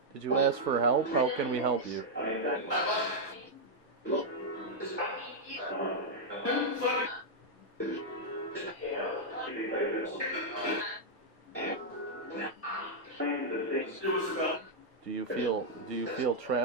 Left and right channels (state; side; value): normal; both; correlation -0.04